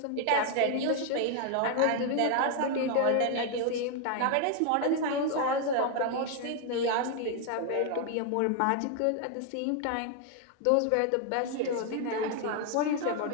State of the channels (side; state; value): both; different; correlation 0.00